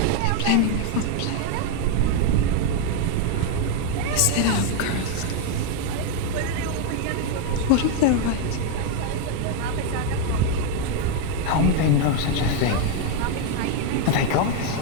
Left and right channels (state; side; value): different; both; correlation 0.01